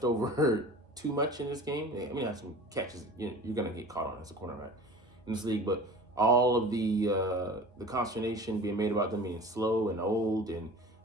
over too much in this game. I mean, that's some catches you're gonna get caught on as a cornerback in this league, but all of the consternation being made about them being slow and old and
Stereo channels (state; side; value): normal; both; correlation 0.40